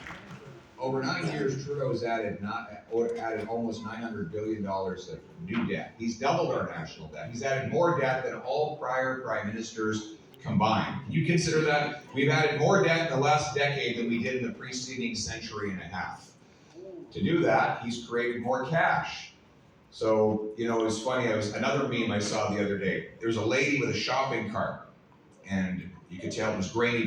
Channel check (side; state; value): both; identical; correlation 1.00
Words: over 9 years, Trudeau's added almost $900 billion of new debt. He's doubled our national debt. He's added more debt than all prior prime ministers combined. Can you consider that? We've added more debt in the last decade than we did in the preceding century and a half. To do that, he's created more cash. So, it was funny. Another meme I saw the other day. There was a lady with a shopping cart, and you could tell it was grainy